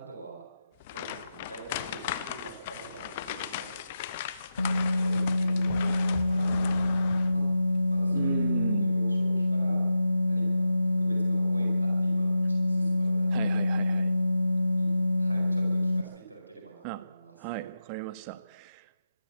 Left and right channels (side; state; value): both; inverted; correlation -0.90